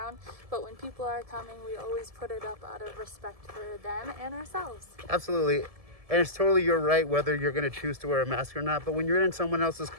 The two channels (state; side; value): late; left; 1.7 ms